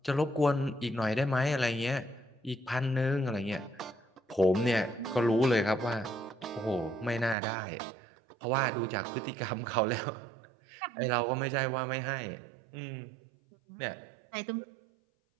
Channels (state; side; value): drops out; left; at 7.4 s